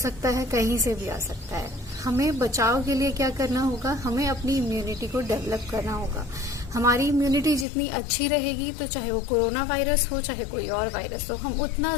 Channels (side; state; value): right; drops out; at 7.7 s